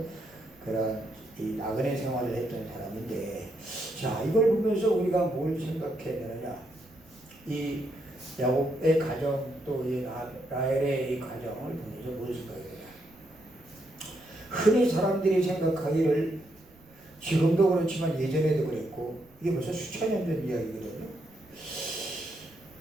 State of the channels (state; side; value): noise; right; rumble, 27 dB below the sound